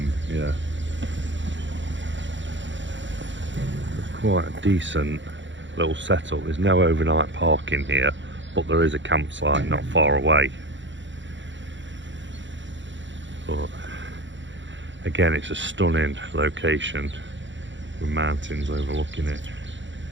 Yeah, it's quite a decent little setup. There's no overnight parking here, but there is a campsite not far away. But again, it's a stunning location with mountains overlooking it.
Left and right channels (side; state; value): left; late; 0.54 ms